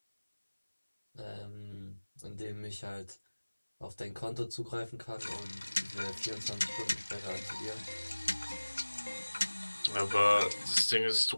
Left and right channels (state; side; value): inverted; both; correlation -1.00